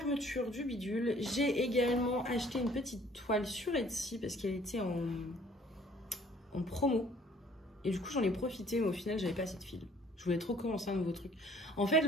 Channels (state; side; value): normal; both; correlation 0.57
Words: du bidule. J'ai également acheté une petite toile sur Etsy parce qu'elle était en promo. Et du coup, j'en ai profité, mais au final, j'avais pas assez de fil. Je voulais trop commencer un nouveau truc. En fait,